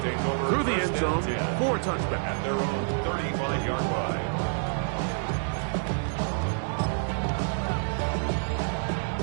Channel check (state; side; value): silent; left; digital silence